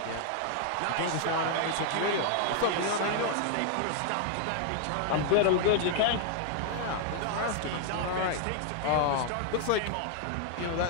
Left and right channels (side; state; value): both; different; correlation 0.00